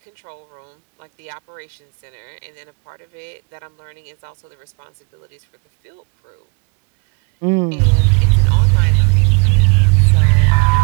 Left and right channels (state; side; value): quieter; left; 33.0 dB